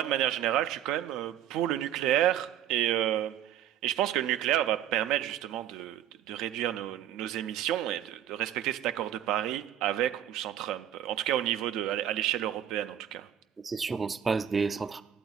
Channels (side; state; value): left; quieter; 10.6 dB